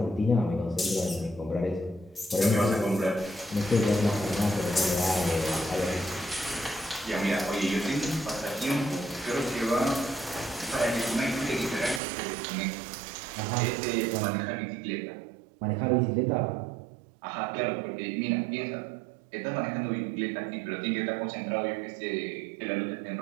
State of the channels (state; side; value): drops out; left; at 12.0 s